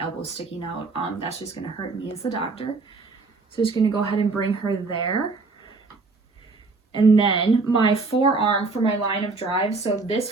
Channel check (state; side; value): quieter; left; 3.9 dB